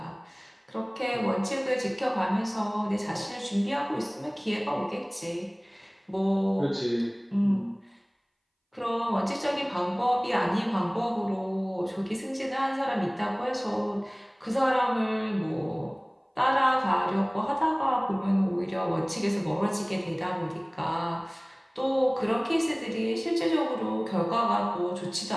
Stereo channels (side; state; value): both; identical; correlation 1.00